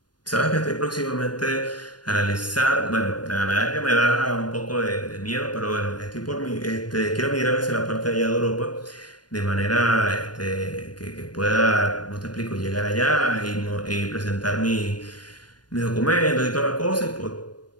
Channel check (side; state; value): right; late; 0.70 ms